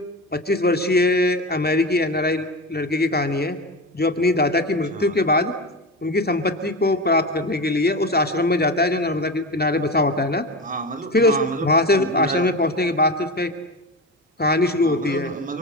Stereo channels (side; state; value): both; normal; correlation 0.24